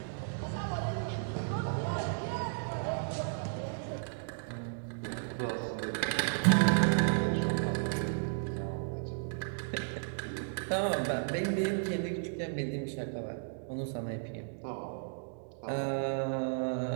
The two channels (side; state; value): left; silent; digital silence